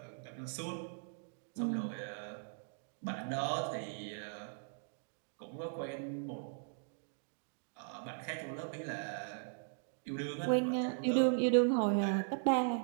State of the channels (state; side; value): silent; left; digital silence